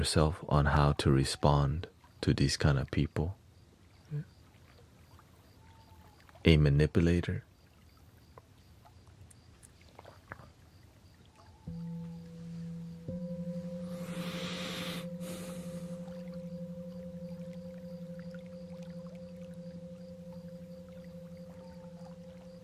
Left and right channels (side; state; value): both; identical; correlation 1.00